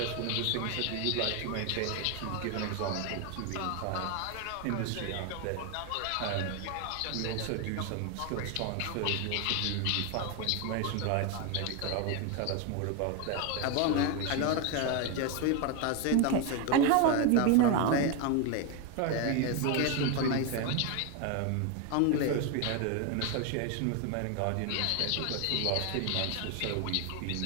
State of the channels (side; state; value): both; different; correlation 0.01